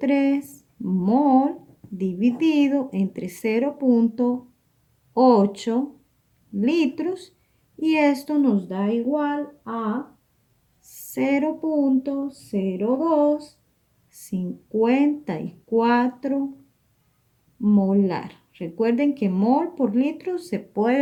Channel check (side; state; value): both; identical; correlation 1.00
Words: mol dividido entre 0.8 litros, y esto nos da igual a 0.0254 molar. Recuerden que mol por litro se